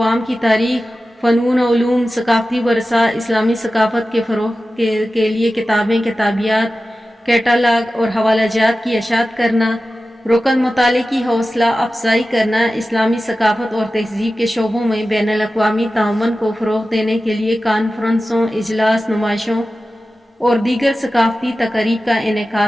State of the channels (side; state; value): both; normal; correlation 0.94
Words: کی تاریخ، فنون و علوم، ثقافتی ورثہ، اسلامی ثقافت کے فروغ کے لیے کتابیں، کتابیات، کیٹالاگ اور حوالہ جات کی اشاعت کرنا، رکن مطالعے کی حوصلہ افزائی کرنا، اسلامی ثقافت اور تہذیب کے شعبوں میں بین الاقوامی تعاون کو فروغ دینے کے لیے کانفرنسوں، اجلاس، نمائشوں اور دیگر ثقافتی تقاریب کا